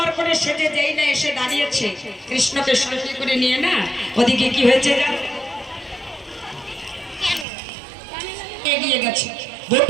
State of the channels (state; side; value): drops out; left; at 7.5 s